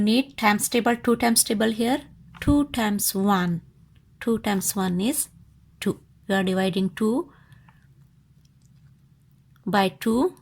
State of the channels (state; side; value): identical; both; correlation 1.00